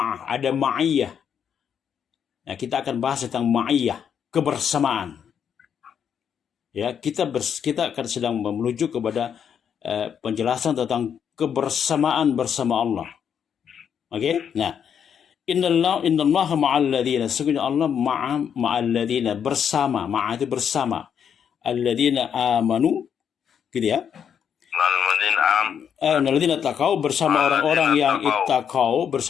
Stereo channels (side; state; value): right; quieter; 8.0 dB